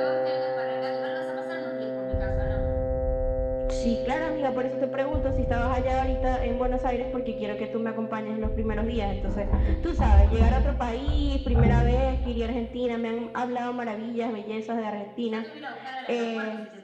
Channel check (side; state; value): both; identical; correlation 1.00